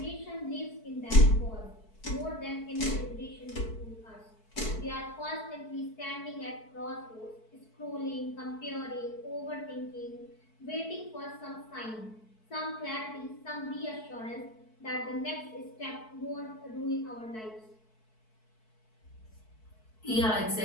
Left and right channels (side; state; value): right; late; 4.6 ms